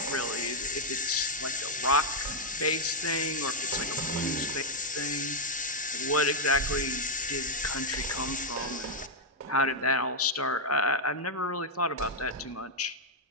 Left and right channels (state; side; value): normal; both; correlation -0.02